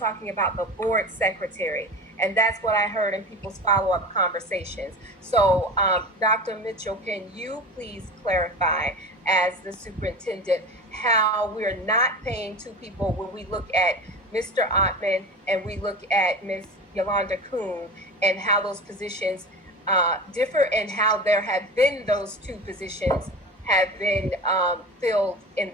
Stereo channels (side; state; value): both; normal; correlation 0.32